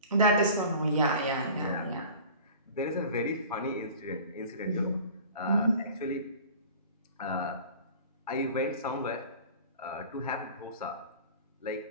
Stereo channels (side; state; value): both; inverted; correlation -0.43